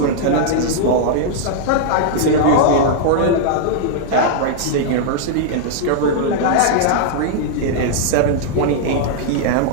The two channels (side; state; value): both; different; correlation -0.01